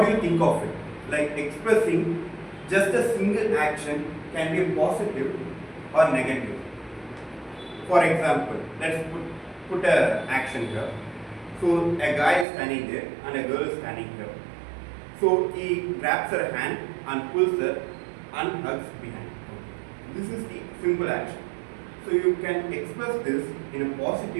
do you think of it? Like expressing just a single action can be positive or negative. For example, let's put an action here. So a guy is standing there and a girl is standing here. So he grabs her hand and pulls her and hugs behind. This is the simple action. So you can express this in a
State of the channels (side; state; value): left; drops out; at 12.5 s